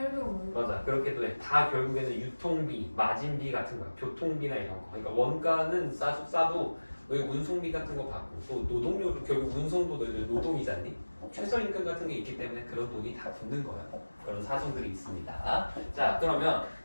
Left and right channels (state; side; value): inverted; both; correlation -1.00